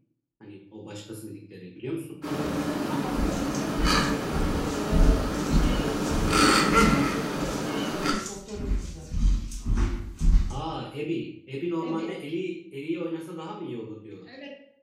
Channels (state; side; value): identical; both; correlation 1.00